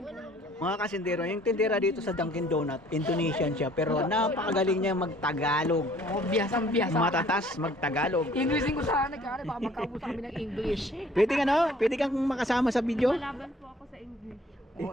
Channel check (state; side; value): normal; both; correlation 0.56